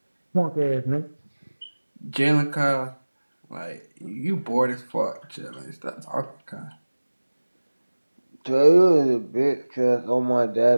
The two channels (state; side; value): inverted; both; correlation -1.00